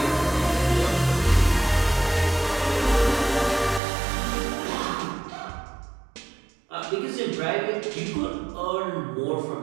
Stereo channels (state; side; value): drops out; left; at 3.8 s